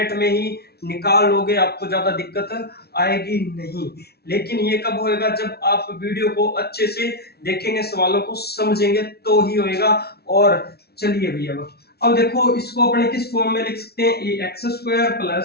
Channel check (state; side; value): late; right; 0.46 ms